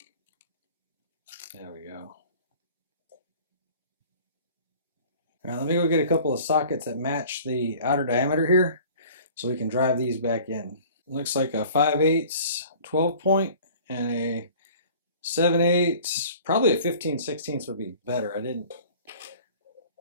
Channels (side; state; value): both; inverted; correlation -0.47